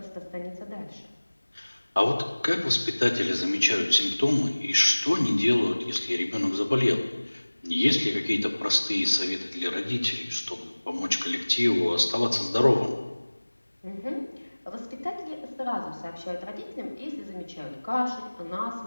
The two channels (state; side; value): inverted; both; correlation -1.00